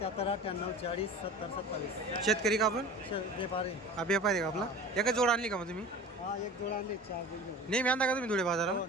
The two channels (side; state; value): both; normal; correlation 0.37